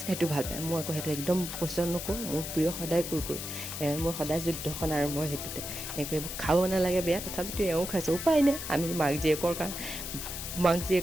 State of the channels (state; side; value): noise; left; hiss, 7 dB below the sound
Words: সেইটো ভাল পায়। মই আকৌ সেইটো একদম পচন্দ নকৰোঁ। মোৰ প্ৰিয় সদায় কুৰকুৰি। মোৰ সদায় যুদ্ধখন আৰম্ভ হয় সেইটোতে। এইবোৰ খাব নালাগে বেয়া, তথাপিতো এওঁ খাইছে, উপায় নাই। আমি মাক